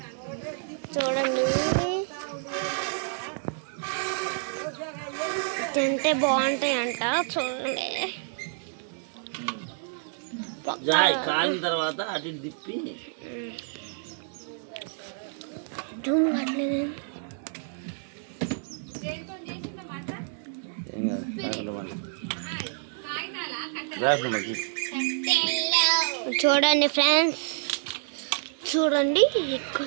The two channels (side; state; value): left; silent; digital silence